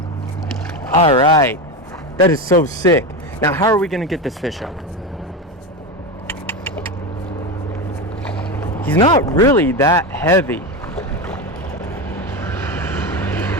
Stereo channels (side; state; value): both; normal; correlation 0.17